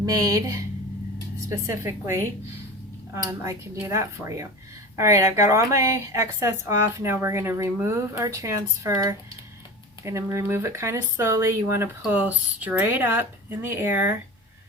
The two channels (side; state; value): both; normal; correlation 0.31